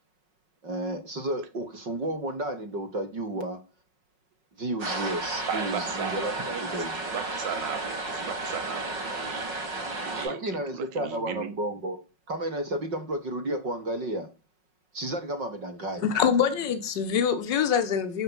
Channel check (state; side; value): late; left; 5.4 ms